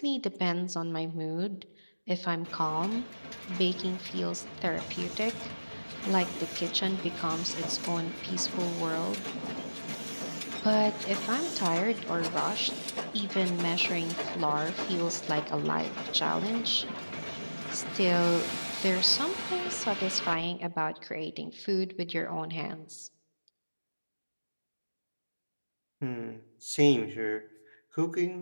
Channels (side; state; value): both; inverted; correlation -1.00